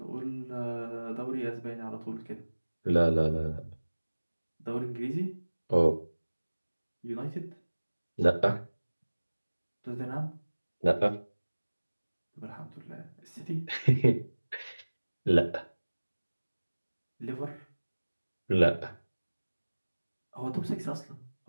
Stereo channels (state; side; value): inverted; both; correlation -1.00